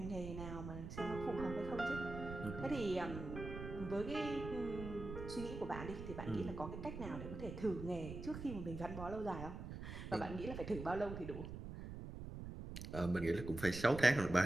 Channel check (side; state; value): right; noise; rumble, 8 dB below the sound